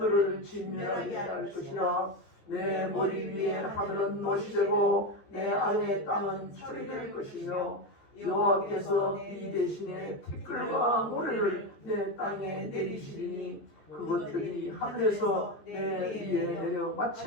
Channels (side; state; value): right; late; 14 ms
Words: 진멸하게 할 것이라. 내 머리 위에 하늘은 못이 되고 내 아래 땅은 철이 될 것이며 여호와께서 이 대신에 티끌과 모래를 내 땅에 내리시리니 그것들이 하늘에서 내 위에 내려